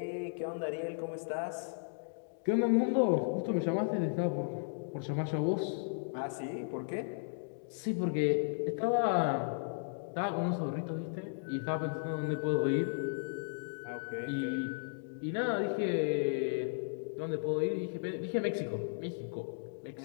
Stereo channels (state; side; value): silent; right; digital silence